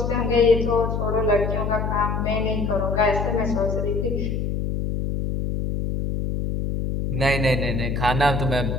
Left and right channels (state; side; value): noise; left; hum, 1 dB below the sound